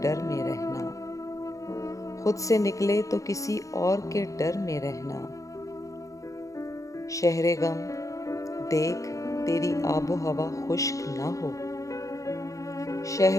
में रहना, खुद से निकले तो किसी और के डर में रहना। शहरे गम देख तेरी आबो हवा खुश्क ना हो,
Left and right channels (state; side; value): late; right; 0.16 ms